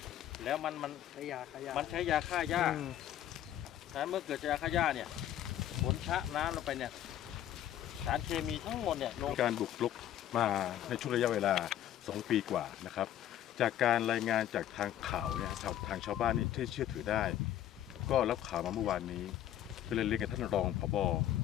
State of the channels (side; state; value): right; quieter; 11.7 dB